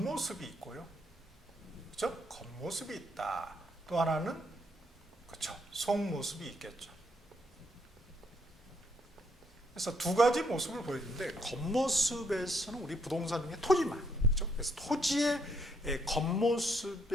있고요. 그렇죠? 겉모습이 있다. 또 하나는 그렇죠. 속모습이 있겠죠. 그래서 두 가지 모습을 보여주는데 겉모습에서는 우리 부동산 중에 토지만, 그렇죠? 그래서 토지의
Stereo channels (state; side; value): normal; both; correlation 0.72